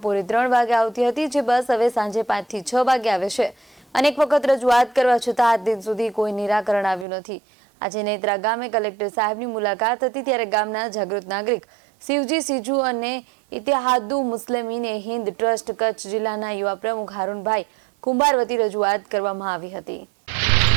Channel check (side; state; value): left; drops out; at 7.1 s